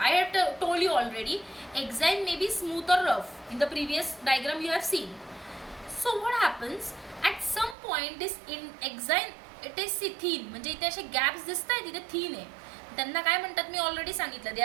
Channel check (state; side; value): drops out; left; at 7.8 s